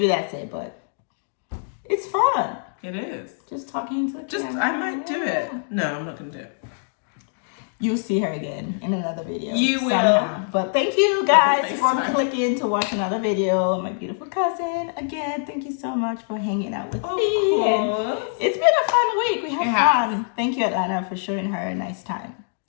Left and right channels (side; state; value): right; silent; digital silence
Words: that's it, but... It's fun. It is. Just talking to the camera. I might do it. No, I'm not going to do it. You'll see her again in another video. You will. But thank you guys for clicking to watch another video. My beautiful cousin. Again, thank you so much for hanging out with me. And it's been a fun week. We had fun. Thank you, Atlanta, for showing her a nice time.